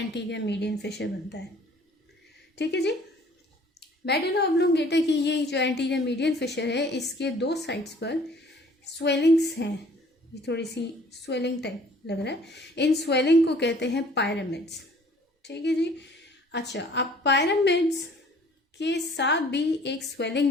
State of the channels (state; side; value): normal; both; correlation 0.54